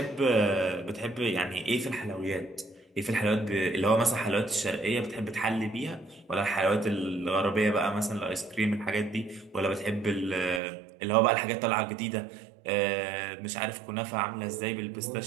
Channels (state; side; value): drops out; left; at 10.6 s